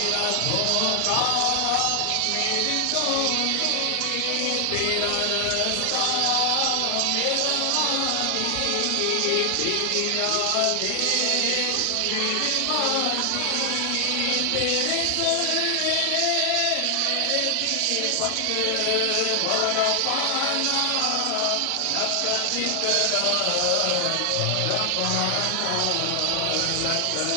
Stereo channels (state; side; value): different; both; correlation 0.00